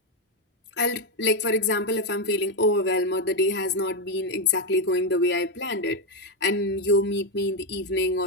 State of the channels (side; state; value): both; normal; correlation 0.06